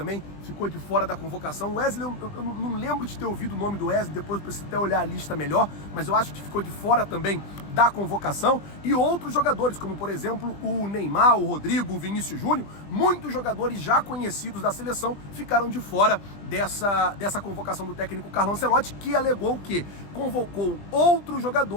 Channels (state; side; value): late; right; 20 ms